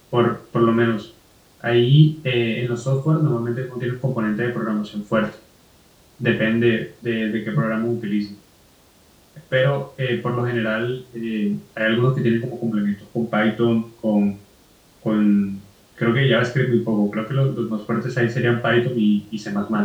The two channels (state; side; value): identical; both; correlation 1.00